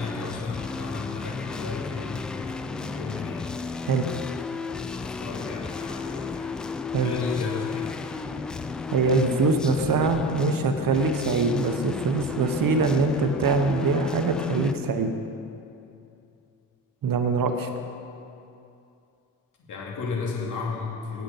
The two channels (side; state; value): both; normal; correlation 0.33